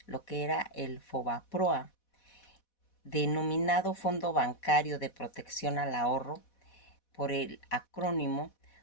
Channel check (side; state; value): right; late; 4.1 ms